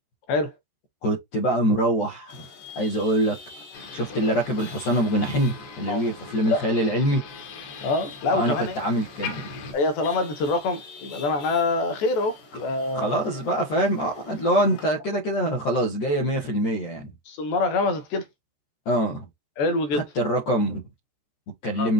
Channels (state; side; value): late; right; 14 ms